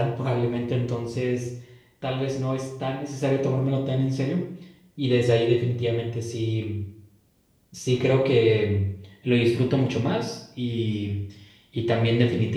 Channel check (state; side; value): identical; both; correlation 1.00